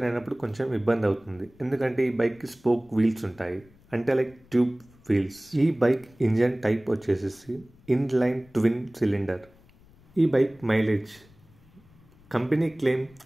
అయినప్పుడు కొంచెం ఇబ్బంది అవుతుంది, ఎందుకంటే ఈ బైక్కి స్పోక్ వీల్స్ ఉంటాయి, అంటే లైక్ ట్యూబ్ వీల్స్. ఈ బైక్ ఇంజన్ టైప్ వచ్చేసి ఇన్లైన్ ట్విన్ సిలిండర్. ఈ బైక్ మైలేజ్ కంపెనీ క్లెయిమ్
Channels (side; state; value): left; noise; rumble, 28 dB below the sound